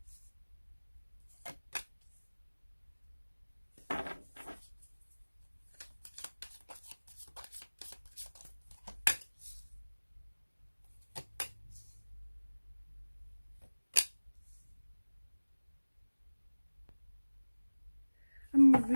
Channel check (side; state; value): both; inverted; correlation -1.00